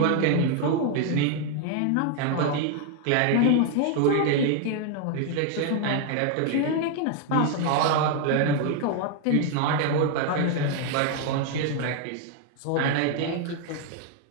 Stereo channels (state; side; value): different; both; correlation 0.00